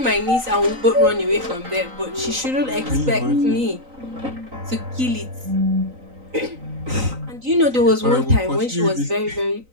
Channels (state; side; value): late; left; 3.9 ms